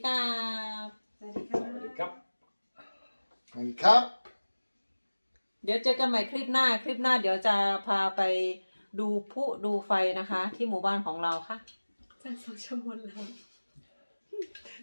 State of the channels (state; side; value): inverted; both; correlation -1.00